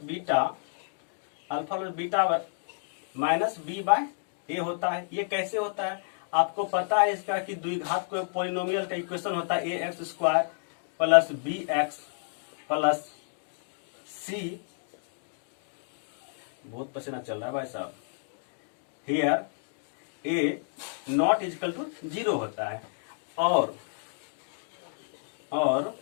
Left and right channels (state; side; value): silent; right; digital silence